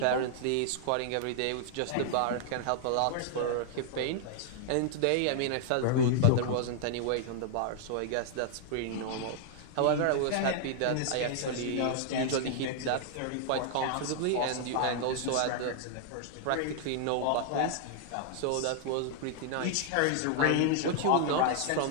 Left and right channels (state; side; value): different; both; correlation -0.01